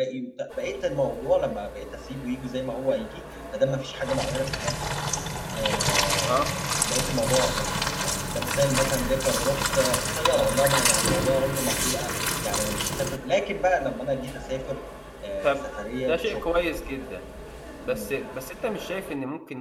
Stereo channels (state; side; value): identical; both; correlation 1.00